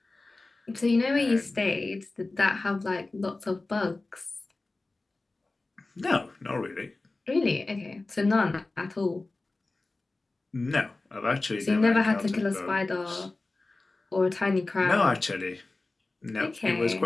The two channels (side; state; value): right; quieter; 3.2 dB